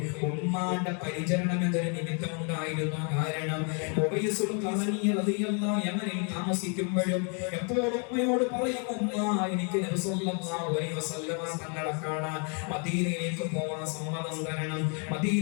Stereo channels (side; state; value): right; quieter; 38.9 dB